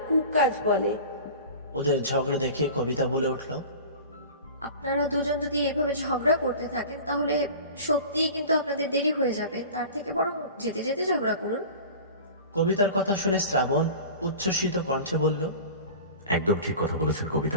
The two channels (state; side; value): inverted; both; correlation -0.38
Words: কুকাজ বলে। ওদের ঝগড়া দেখে কবিতা বলে উঠল, আপনারা দুজন যদি এভাবে ঝগড়া করতে থাকেন তাহলে সত্যিই কিন্তু আপনাদের দেরি হয়ে যাবে। তার থেকে বরং যেতে যেতে ঝগড়া করুন। কবিতার কথা শুনে শ্রাবণ উচ্ছ্বসিত কণ্ঠে বলল, একদম ঠিক কথা বলেছেন